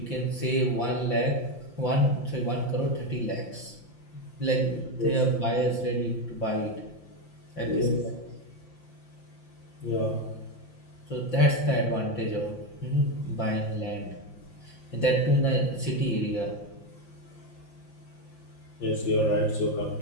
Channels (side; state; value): right; late; 5.8 ms